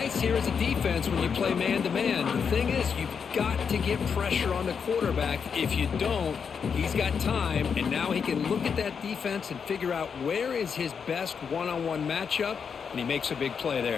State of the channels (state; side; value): quieter; right; 6.5 dB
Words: here as a defense when you play man-to-man. The thing is, you've got to get pressure on the quarterback. If you don't, he's got time, and now he can look at that defense and figure out where is his best one-on-one matchup, and he makes a big play